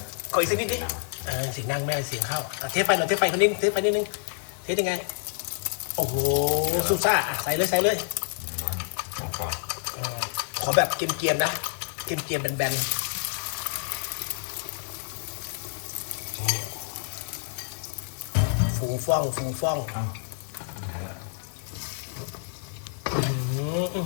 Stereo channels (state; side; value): silent; right; digital silence